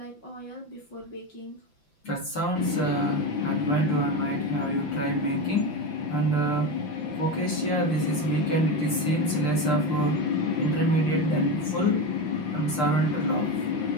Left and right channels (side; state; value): right; late; 5.9 ms